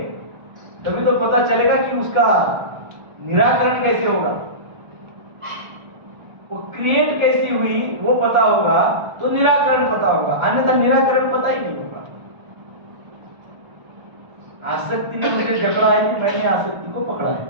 तभी तो पता चलेगा कि उसका निराकरण कैसे होगा, वो क्रिएट कैसी हुई वो पता होगा तो निराकरण पता होगा, अन्यथा निराकरण पता ही नहीं होगा। आसक्ति ने मुझे जकड़ा है कि मैंने आसक्ति को पकड़ा है,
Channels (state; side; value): late; left; 1.4 ms